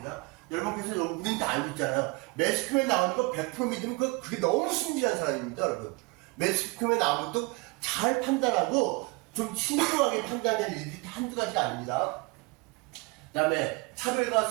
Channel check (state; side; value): quieter; left; 27.3 dB